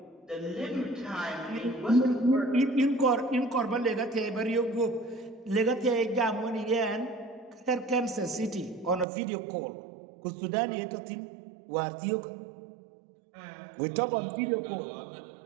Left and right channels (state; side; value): drops out; left; at 9.1 s